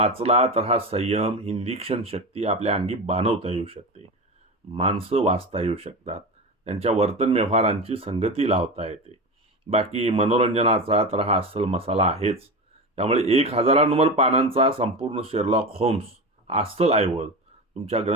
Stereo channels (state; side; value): normal; both; correlation 0.24